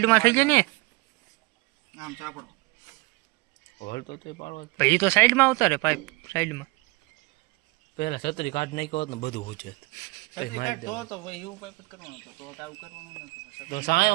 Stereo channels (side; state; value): left; quieter; 24.3 dB